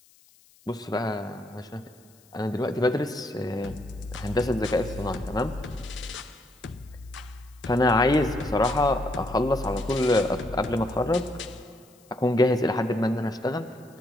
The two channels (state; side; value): noise; left; hiss, 29 dB below the sound